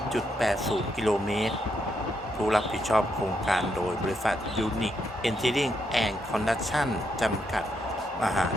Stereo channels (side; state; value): both; normal; correlation 0.79